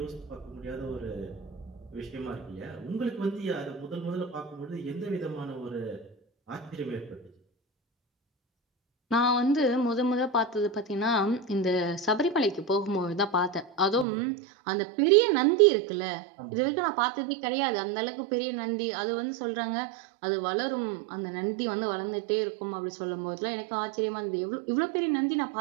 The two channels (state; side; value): drops out; left; at 14.1 s